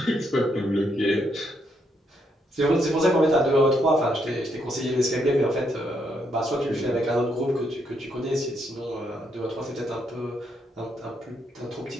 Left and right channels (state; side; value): normal; both; correlation 0.76